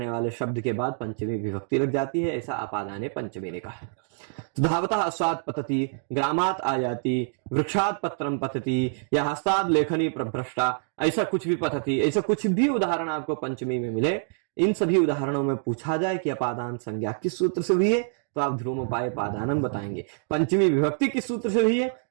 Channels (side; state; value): left; silent; digital silence